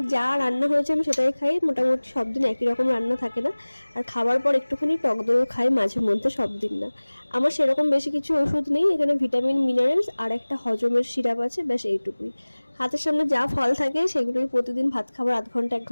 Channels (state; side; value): inverted; both; correlation -1.00